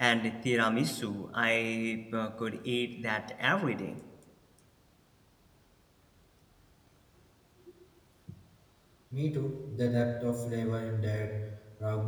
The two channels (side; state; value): both; identical; correlation 1.00